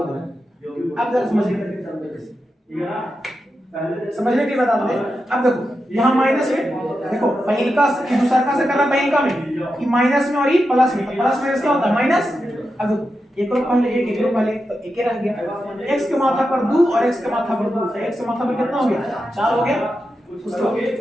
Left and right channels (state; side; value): normal; both; correlation 0.88